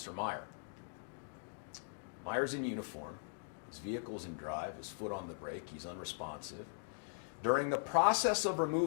Meier. Meier's in uniform, his vehicle's in drive, his foot on the brake, he's unresponsive. During the process of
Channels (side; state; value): right; silent; digital silence